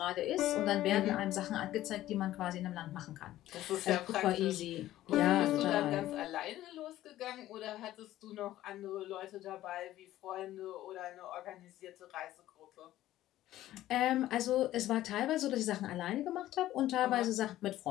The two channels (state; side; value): quieter; right; 14.3 dB